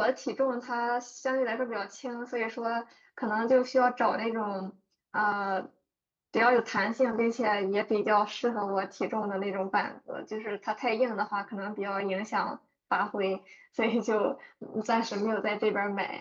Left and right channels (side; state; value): both; identical; correlation 1.00